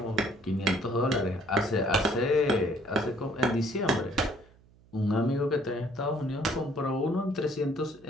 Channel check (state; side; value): noise; right; hum, 28 dB below the sound